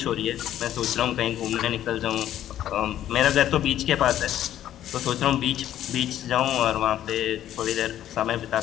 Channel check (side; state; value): right; quieter; 11.8 dB